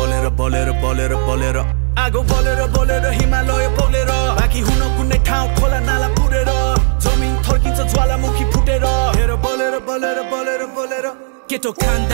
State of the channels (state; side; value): silent; left; digital silence